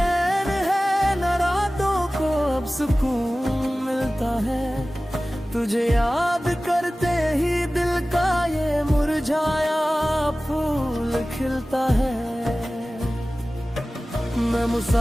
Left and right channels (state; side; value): normal; both; correlation 0.97